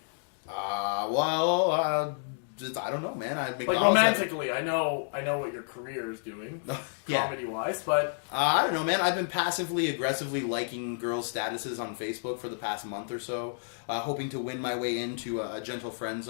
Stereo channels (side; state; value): right; silent; digital silence